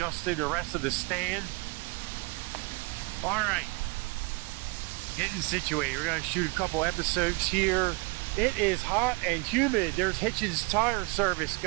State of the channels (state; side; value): quieter; left; 28.3 dB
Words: the rest of the stand. Alright, getting situated. We're going to shoot a couple episodes here. It is hot and humid. There's Hitchens Tire Service